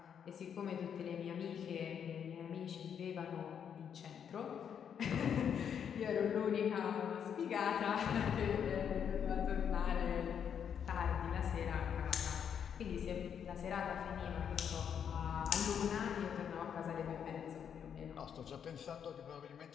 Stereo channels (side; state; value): right; quieter; 8.0 dB